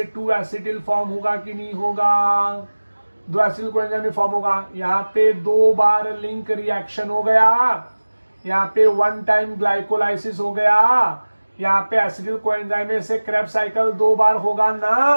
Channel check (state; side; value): inverted; both; correlation -1.00